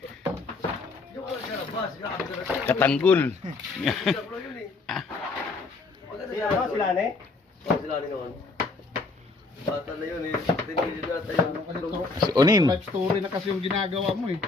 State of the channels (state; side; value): quieter; right; 3.8 dB